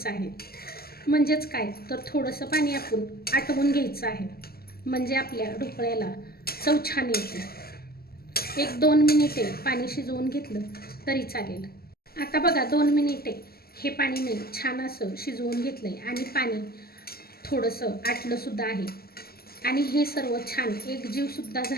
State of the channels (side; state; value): right; late; 0.45 ms